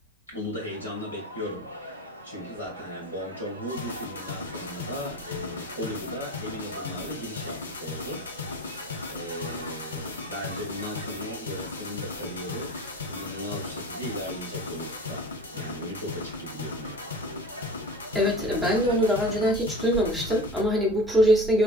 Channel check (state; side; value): normal; both; correlation 0.36